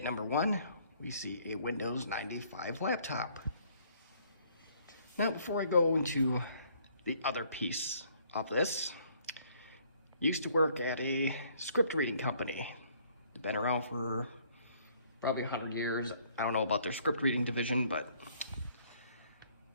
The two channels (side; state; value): both; inverted; correlation -0.63